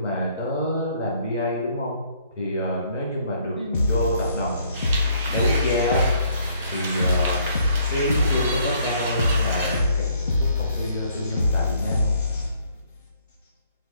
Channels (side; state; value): both; inverted; correlation -0.65